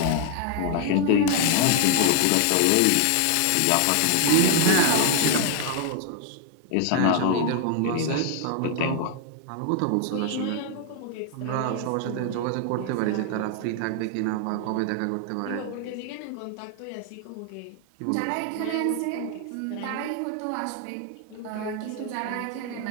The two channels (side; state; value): both; different; correlation 0.00